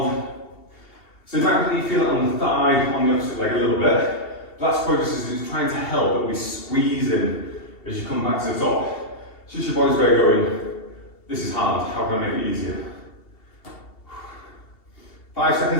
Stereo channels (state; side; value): late; right; 2.7 ms